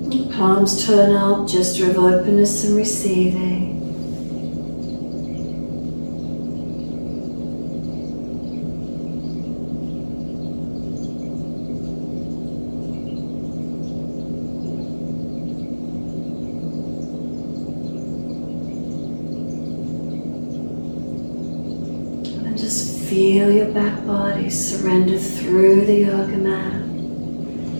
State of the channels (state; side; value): inverted; both; correlation -1.00